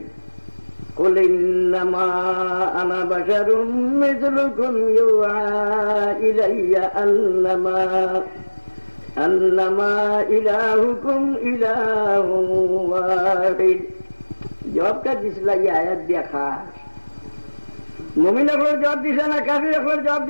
কুল ইন্নামা আনা বাশারুম মিসলুকুম ইউআ ইলাইয়া আন্নামা ইলাহুকুম ইলাহুন ওয়াহিদ। জবাবটা দিছিল এই আয়াত দিয়া খাস মুমিন একবার জবাব দিছে না কাফির একবার জবাব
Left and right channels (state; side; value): inverted; both; correlation -1.00